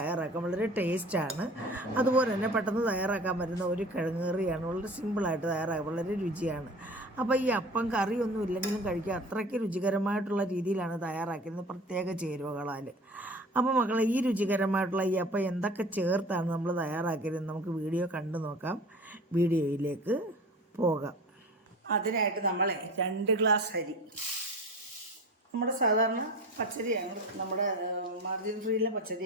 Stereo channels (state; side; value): normal; both; correlation 0.39